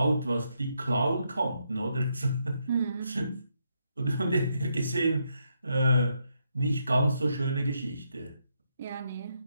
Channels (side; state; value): both; inverted; correlation -0.78